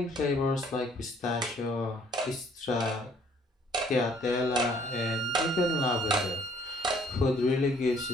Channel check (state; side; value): normal; both; correlation 0.60